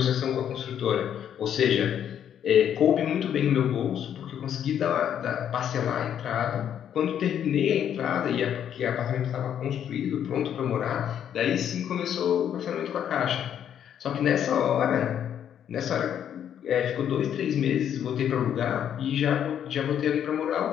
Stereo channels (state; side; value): quieter; right; 9.4 dB